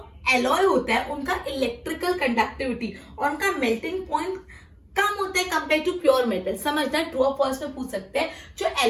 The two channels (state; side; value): identical; both; correlation 1.00